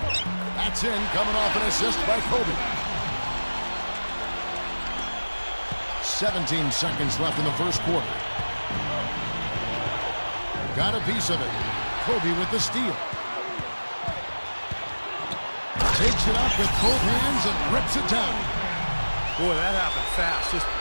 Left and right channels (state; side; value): inverted; both; correlation -1.00